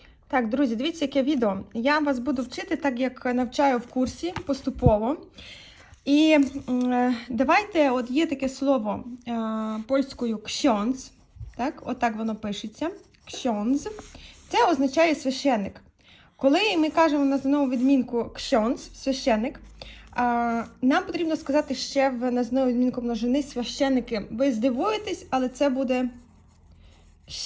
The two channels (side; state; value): both; identical; correlation 1.00